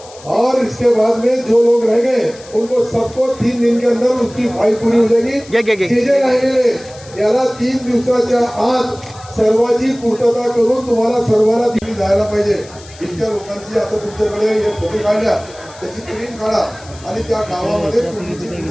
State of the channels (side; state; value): left; noise; hiss, 21 dB below the sound